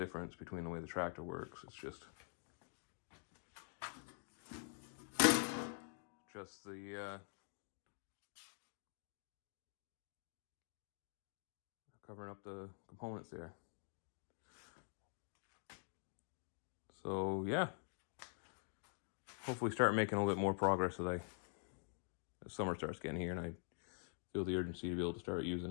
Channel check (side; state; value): right; silent; digital silence